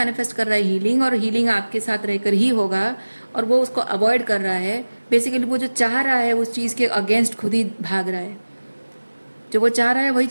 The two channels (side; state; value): both; inverted; correlation -1.00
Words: कर रहा है हीलिंग, और हीलिंग आपके साथ रहकर ही होगा। और वो उसको अवॉइड कर रहा है। बेसिकली वो जो चाह रहा है उस चीज़ के अगेंस्ट खुद ही भाग रहा है। जो वो चाह रहा है वही